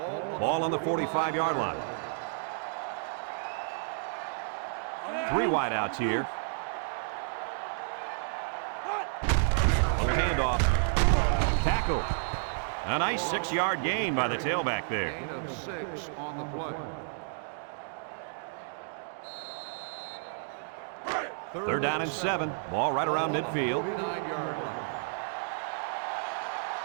Ball on the 45-yard line. 3 wideouts here. Little handoff. Tackle. A nice 6-yard gain by the tailback there. Gain of 6 on the play. Third down and 7. Ball right around midfield. 49-yard line.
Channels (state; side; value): silent; left; digital silence